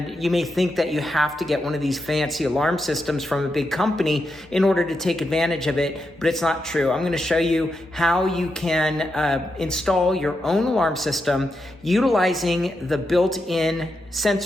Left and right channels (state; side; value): normal; both; correlation 0.85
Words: you may think that you have to get one of these fancy alarm systems from a big company in order to take advantage of it, but it's not true. I'm going to show you how you can install your own alarm system utilizing the built-in